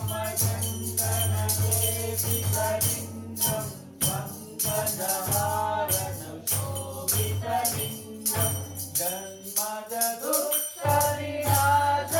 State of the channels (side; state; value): both; identical; correlation 1.00